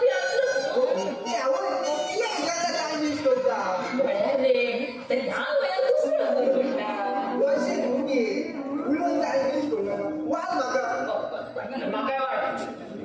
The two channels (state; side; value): identical; both; correlation 1.00